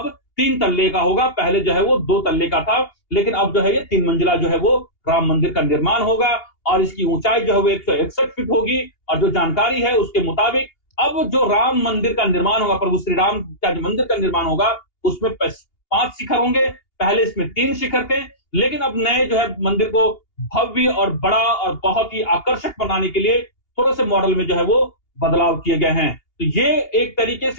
3 तल्ले का होगा। पहले जो है वो 2 तल्ले का था, लेकिन अब जो है ये 3 मंजिला जो है वो राम मंदिर का निर्माण होगा। और इसकी ऊंचाई जो है वो 161 फीट होगी। और जो जानकारी है उसके मुताबिक अब जो राम मंदिर का निर्माण होगा, प्रभु श्री राम का जो मंदिर का निर्माण होगा, उसमें 5 शिखर होंगे। पहले इसमें 3 शिखर थे, लेकिन अब नए जो है मंदिर को भव्य और बड़ा और बहुत ही आकर्षक बनाने के लिए थोड़े से मॉडल में जो है वो बदलाव किए गए हैं। तो ये एक तरीके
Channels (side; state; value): right; late; 2.8 ms